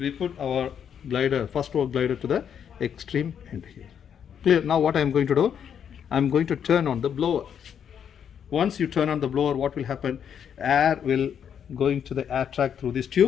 put our glider, first row glider, to the extreme end here. Clear? Now what I am going to do, I am going to turn on the blower. Once you turn on the blower, what will happen? Air will go into the air track through this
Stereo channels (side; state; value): right; quieter; 8.3 dB